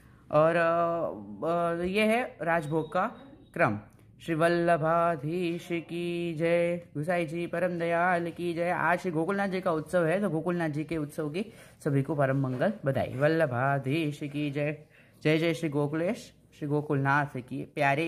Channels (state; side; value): identical; both; correlation 1.00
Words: और ये है राजभोग का क्रम। श्री वल्लभाधीश की जय, गुसाई जी परम दयाल की जय। आज श्री गोकुलनाथ जी का उत्सव है, तो गोकुलनाथ जी के उत्सव की सभी को परम मंगल बधाई। वल्लभाधीश की जय। जय जय श्री गोकुलेश, श्री गोकुलनाथ की